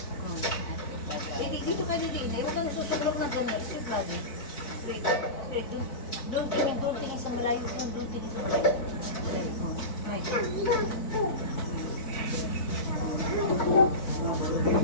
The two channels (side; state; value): right; late; 4.2 ms